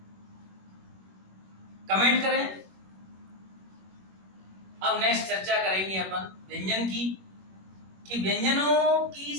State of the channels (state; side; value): late; left; 21 ms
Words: कमेंट करें। अब नेक्स्ट चर्चा करेंगे अपन व्यंजन की कि व्यंजनों की